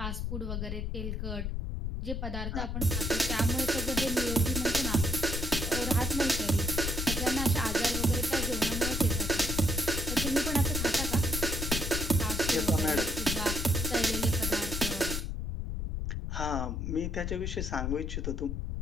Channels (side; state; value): left; noise; rumble, 3 dB below the sound